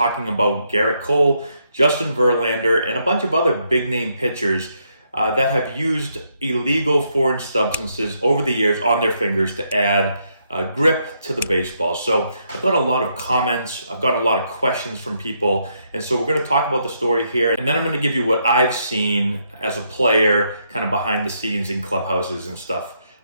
about Gerrit Cole, Justin Verlander, and a bunch of other big-name pitchers that have used illegal foreign substances over the years on their fingers to add grip to the baseball. So I've got a lot of comments, I've got a lot of questions from people, and so we're going to talk about the story here, and then I'm going to give you what I've seen as a player, kind of behind the scenes in clubhouses and stuff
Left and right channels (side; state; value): both; inverted; correlation -0.76